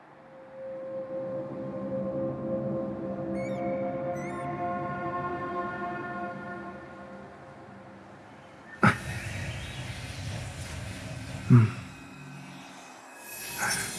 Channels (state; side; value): identical; both; correlation 1.00